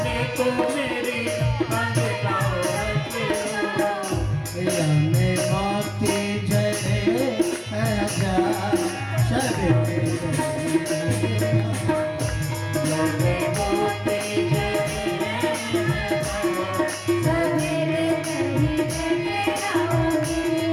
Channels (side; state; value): both; identical; correlation 1.00